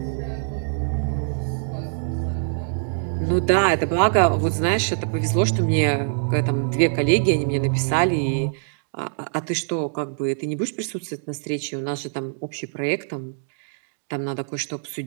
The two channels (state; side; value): silent; left; digital silence